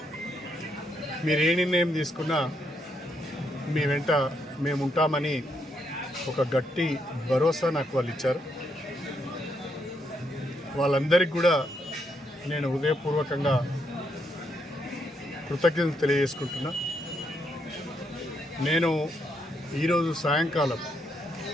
మీరు ఏ నిర్ణయం తీసుకున్నా మీ వెంట మేము ఉంటామని ఒక గట్టి భరోసా నాకు వాళ్ళు ఇచ్చారు. వాళ్ళందరికీ కూడా నేను హృదయపూర్వకంగా కృతజ్ఞతలు తెలియజేసుకుంటున్నా. నేను ఈరోజు సాయంకాలం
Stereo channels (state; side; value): normal; both; correlation 0.77